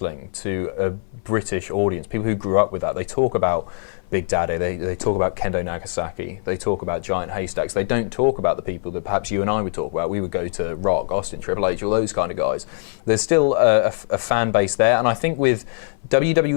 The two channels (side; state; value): right; silent; 59 dB below the other